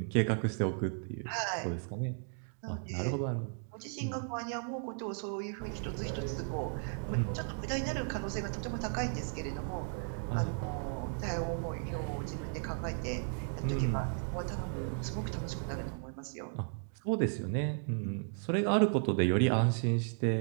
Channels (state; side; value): silent; left; 54 dB below the other